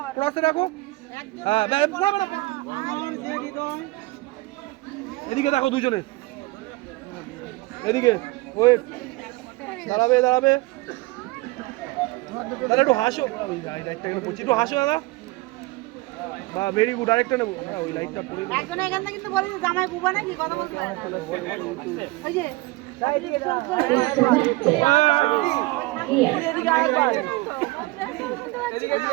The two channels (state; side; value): quieter; left; 22.0 dB